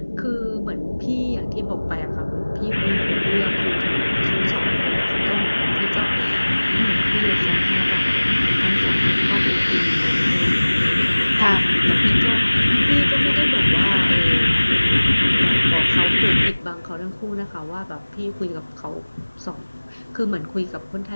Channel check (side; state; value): both; inverted; correlation -1.00